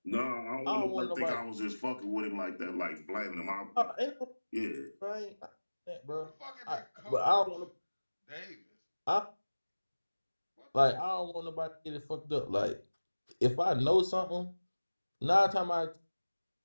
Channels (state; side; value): inverted; both; correlation -1.00